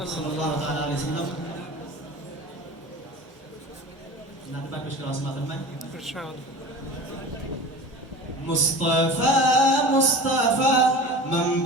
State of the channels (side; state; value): both; normal; correlation 0.36